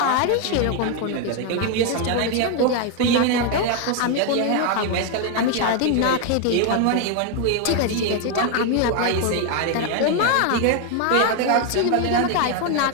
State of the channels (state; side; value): different; both; correlation 0.01